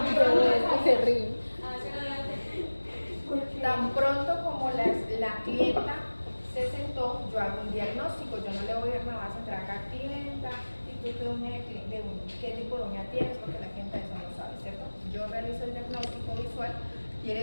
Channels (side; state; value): both; inverted; correlation -1.00